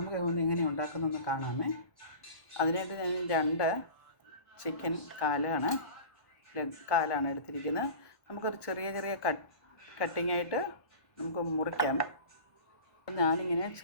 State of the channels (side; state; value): right; late; 1.1 ms